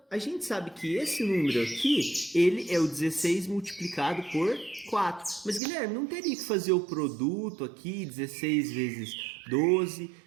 a gente sabe que esse número aqui, ele é o 16 multiplicado por 4. Mas, Guilherme, não teria que fazer o produto aqui, 16 vezes 12...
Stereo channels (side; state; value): left; drops out; at 5.6 s